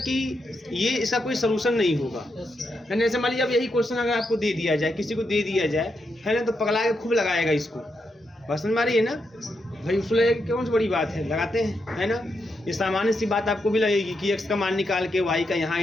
ये इसका कोई सोल्यूशन नहीं होगा। मैंने ऐसे मान लीजिए अब यही क्वेश्चन अगर आपको दे दिया जाए, किसी को दे दिया जाए, है ना, तो पगला के खूब लगाएगा इसको, बस समझ मारिए ना भाई, उसको लगेगा कौन सी बड़ी बात है, लगाते हैं, है ना। ये सामान्य सी बात आपको भी लगेगी कि x का मान निकाल के y का यहाँ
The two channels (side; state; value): both; normal; correlation 0.83